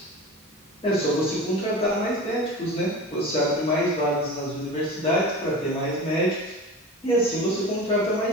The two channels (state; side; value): normal; both; correlation 0.32